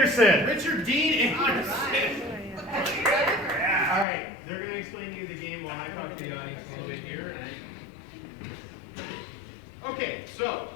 Richard Dean Anderson. All right, they're going to explain to you the game while I talk to the audience a little bit here. Okay, so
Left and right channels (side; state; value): right; drops out; at 4.0 s